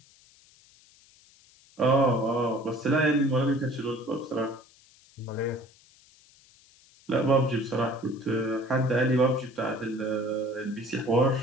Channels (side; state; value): left; noise; hiss, 28 dB below the sound